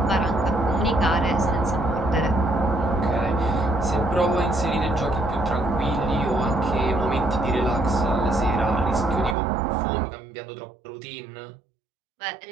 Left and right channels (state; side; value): drops out; left; at 9.3 s